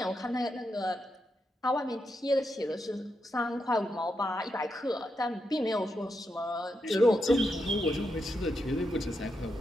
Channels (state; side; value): normal; both; correlation 0.84